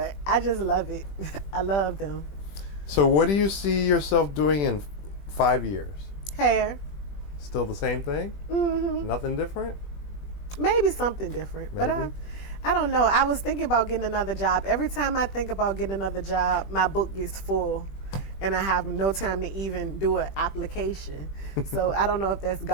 I just love it. I love them. So what do you see yourself doing in 5 years? Hair. Still the same thing? Nothing different? Maybe something different, but I don't know. I was thinking about getting another job. Every time I think about getting another job, my book gets full, and I have no time to even do an application. So I don't know if that's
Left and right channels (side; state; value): right; late; 20 ms